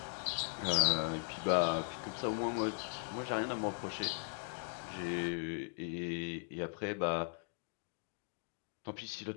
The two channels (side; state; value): right; silent; 52 dB below the other